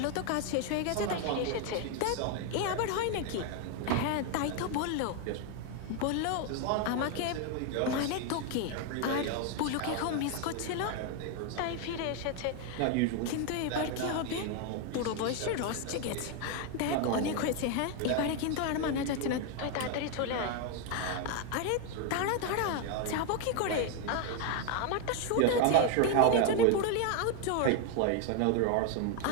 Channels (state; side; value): different; both; correlation 0.01